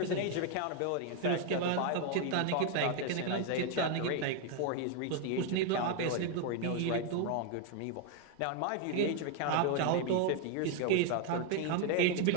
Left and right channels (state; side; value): different; both; correlation 0.01